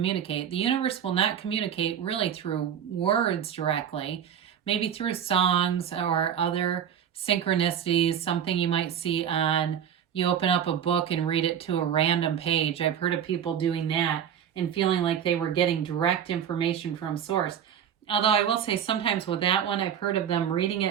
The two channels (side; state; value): left; quieter; 8.9 dB